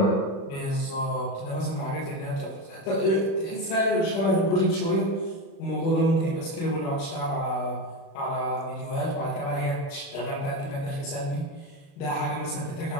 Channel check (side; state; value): right; late; 36 ms